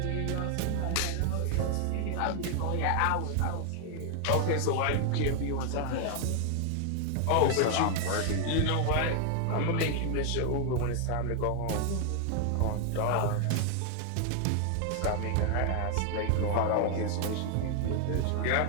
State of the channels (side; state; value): both; different; correlation 0.00